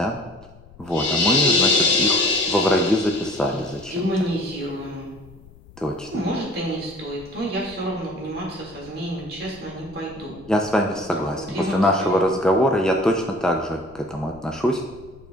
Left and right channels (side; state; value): left; noise; rumble, 23 dB below the sound